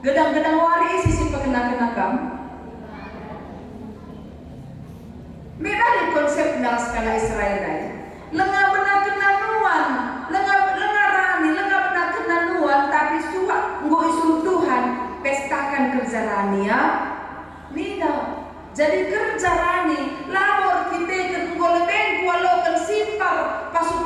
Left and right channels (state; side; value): identical; both; correlation 1.00